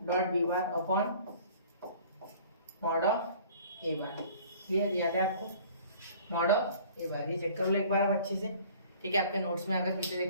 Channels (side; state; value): both; inverted; correlation -0.50